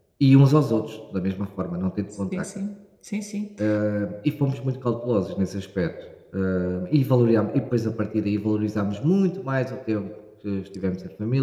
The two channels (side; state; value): both; identical; correlation 1.00